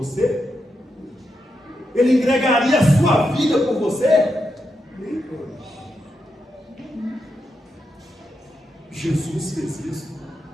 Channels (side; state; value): both; normal; correlation 0.85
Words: Ele entregaria a sua vida por você? Jesus fez isso.